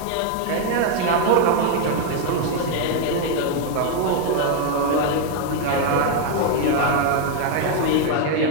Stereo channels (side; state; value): both; different; correlation 0.01